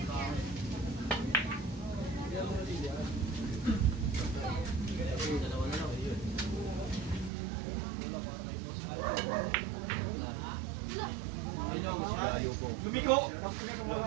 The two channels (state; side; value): drops out; left; at 7.3 s